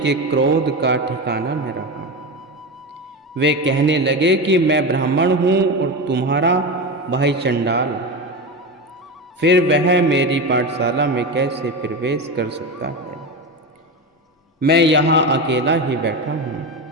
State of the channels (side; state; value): both; normal; correlation 0.20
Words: क्रोध का ठिकाना न रहा। वे कहने लगे कि मैं ब्राह्मण हूं और तुम्हारा भाई चंडाल, फिर वह मेरी पाठशाला में कैसे प्रवेश कर सकता है? मैं यहाँ अकेला ही बैठा हूँ।